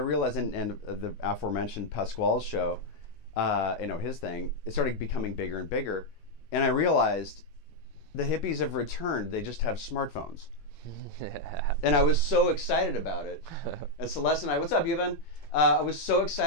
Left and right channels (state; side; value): late; right; 19 ms